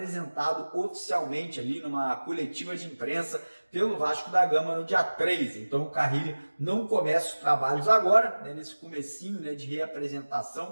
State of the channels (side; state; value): both; inverted; correlation -1.00